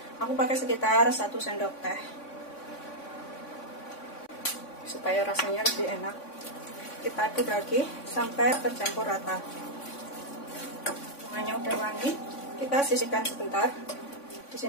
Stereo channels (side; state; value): right; late; 3.5 ms